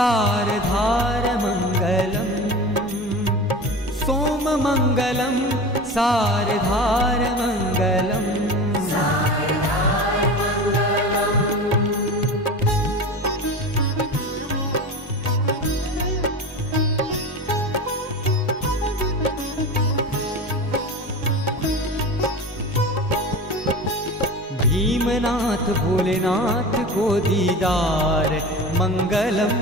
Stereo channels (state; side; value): normal; both; correlation 0.30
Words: सोममङ्गलं सारधारमङ्गलम् भीमनाथ भोलेनाथ को दीदार मंगलम